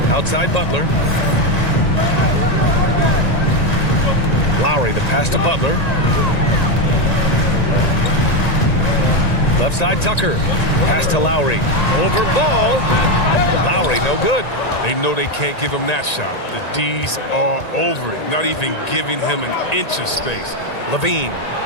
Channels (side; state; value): right; late; 1.9 ms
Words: Outside Butler. Lowry, the pass to Butler. Left side, Tucker. Pass to Lowry. Over Ball. Lowry, no good. They know they can't give him that shot. The D's are over it, not even giving him an inch of space. Levine.